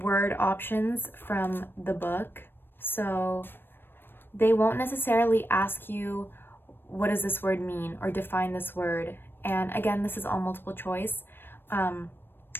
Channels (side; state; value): right; late; 0.098 ms